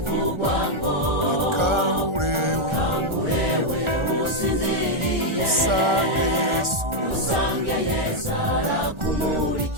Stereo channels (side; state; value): left; late; 1.4 ms